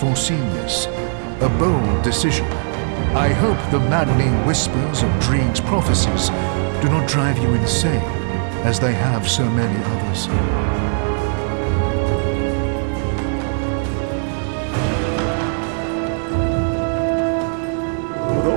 this. A bold decision. I hope the maddening whispers of Dreeg's prophecies do not drive you insane, as they have so many others. The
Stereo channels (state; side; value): silent; left; 65 dB below the other